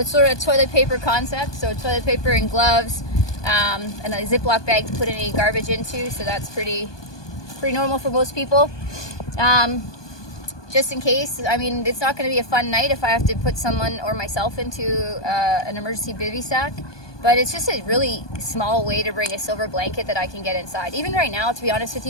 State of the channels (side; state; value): right; late; 1.2 ms